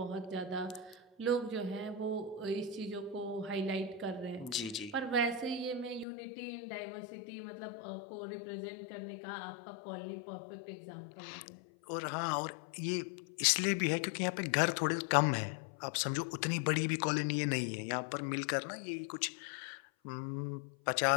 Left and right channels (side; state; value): right; drops out; at 6.1 s